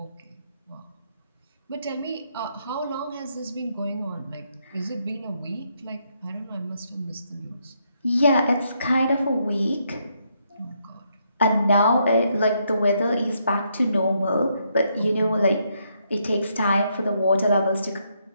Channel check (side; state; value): both; inverted; correlation -0.76